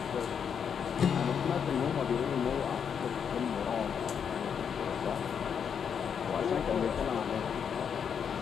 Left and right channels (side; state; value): right; quieter; 7.4 dB